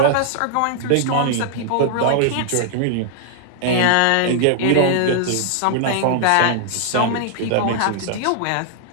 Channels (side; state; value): both; different; correlation -0.01